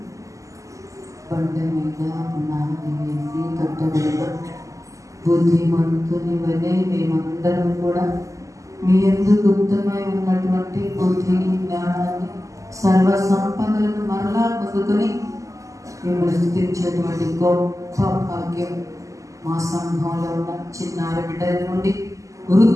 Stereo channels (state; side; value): late; left; 0.16 ms